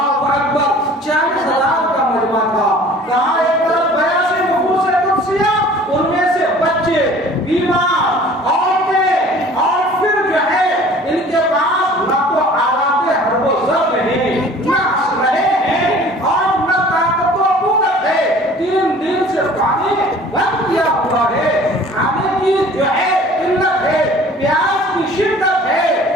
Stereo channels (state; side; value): normal; both; correlation 0.48